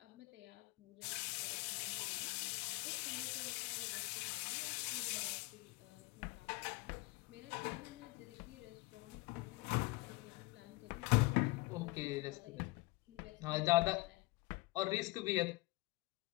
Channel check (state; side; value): quieter; right; 23.6 dB